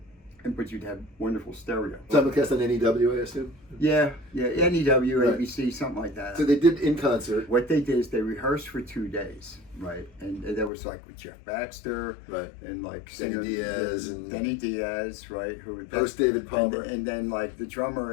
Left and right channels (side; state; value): right; drops out; at 10.7 s